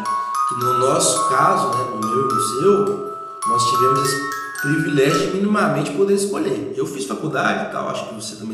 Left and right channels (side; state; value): both; identical; correlation 1.00